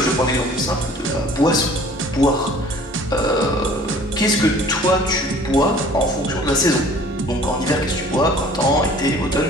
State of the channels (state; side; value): normal; both; correlation 0.50